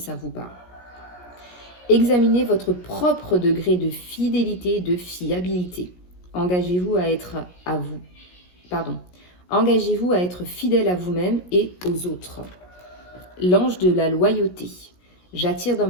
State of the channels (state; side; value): late; right; 17 ms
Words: vous parle. Examinez votre propre degré de fidélité et de fiabilité. Engagez-vous à être Engagez-vous à être fidèle à vous-même et aux autres. L'ange de la loyauté. J'attire dans